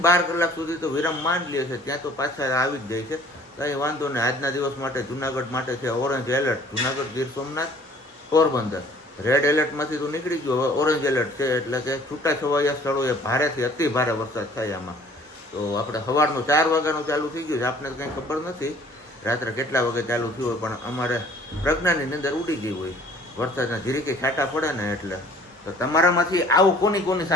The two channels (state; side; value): normal; both; correlation 0.54